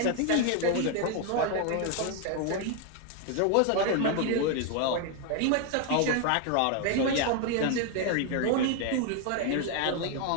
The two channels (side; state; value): both; different; correlation 0.01